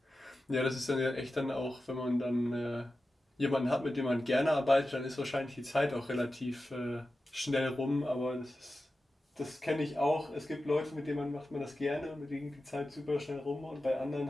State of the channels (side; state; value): both; normal; correlation 0.93